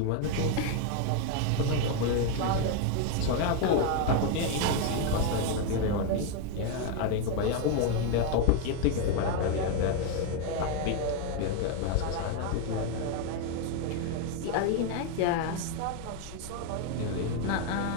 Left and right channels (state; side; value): different; both; correlation 0.01